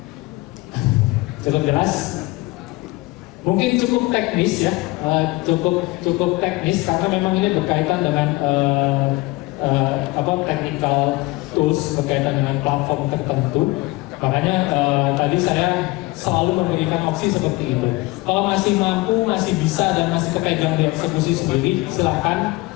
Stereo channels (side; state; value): right; quieter; 21.5 dB